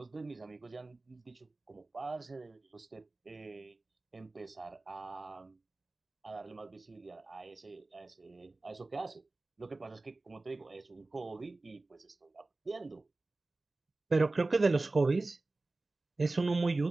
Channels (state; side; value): quieter; left; 3.2 dB